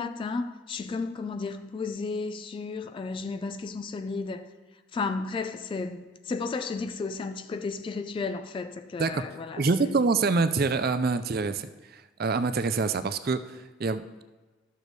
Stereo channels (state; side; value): normal; both; correlation 0.45